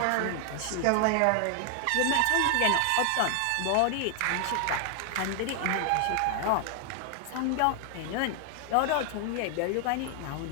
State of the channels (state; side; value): different; both; correlation 0.00